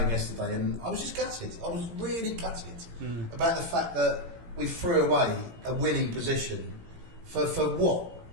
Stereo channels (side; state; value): left; late; 18 ms